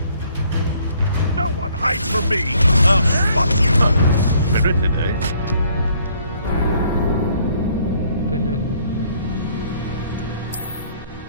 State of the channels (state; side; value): inverted; both; correlation -0.63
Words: No one hides from me! I'll spot you! Spirited, eh?